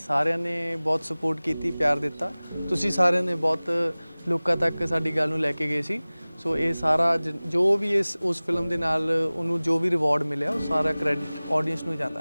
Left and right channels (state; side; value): inverted; both; correlation -0.99